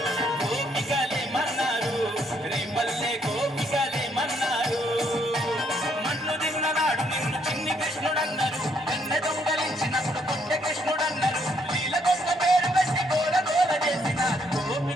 గోపికలేమన్నారు రేపల్లె గోపికలేమన్నారు మన్ను తిన్ననాడు నిన్ను చిన్ని కృష్ణుడన్నారు వెన్నె దొంగలించినప్పుడు కొట్ట కృష్ణుడన్నారు లీల దొంగ పేరు పెట్టి గోల గోల చేసినారు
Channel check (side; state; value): both; normal; correlation 0.71